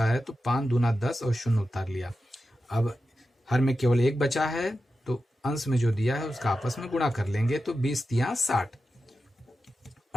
है, तो 5 दूना 10 और 0 उतार लिया। अब हर में केवल 1 बचा है तो अंश में जो दिया है उसका आपस में गुणा कर लेंगे तो 20 तिया 60।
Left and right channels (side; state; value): both; normal; correlation 0.91